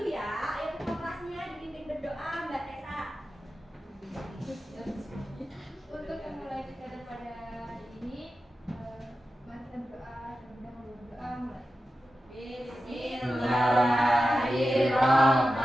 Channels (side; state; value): both; normal; correlation 0.92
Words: ya. Ayo ketua kelasnya dipimpin berdoa, Mbak Tessa. Untuk memulai kegiatan pada hari ini, mari kita berdoa terlebih dahulu. Berdoa mulai.